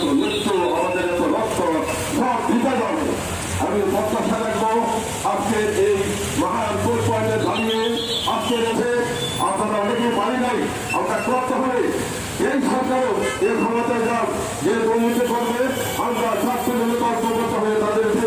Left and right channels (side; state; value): both; identical; correlation 1.00